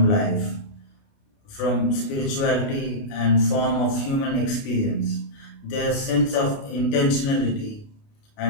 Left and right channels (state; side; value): late; right; 29 ms